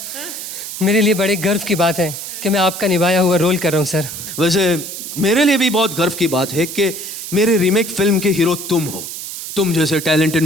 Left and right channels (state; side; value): noise; right; hiss, 8 dB below the sound